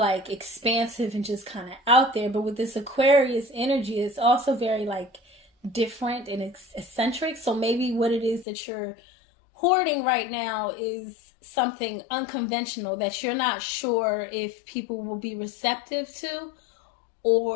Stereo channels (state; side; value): drops out; right; at 8.5 s